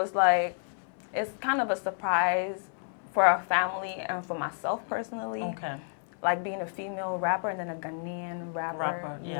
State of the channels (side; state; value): right; silent; 58 dB below the other